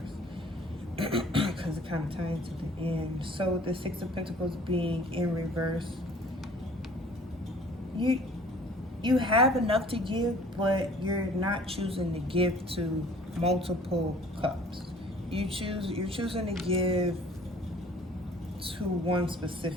because it kind of ties to the end. So the Six of Pentacles being in reverse, you have enough to give, but you're not choosing to give to multiple cups. You're choosing to give to one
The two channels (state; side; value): normal; both; correlation 0.51